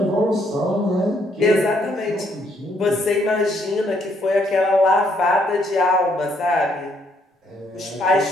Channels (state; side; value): normal; both; correlation 0.70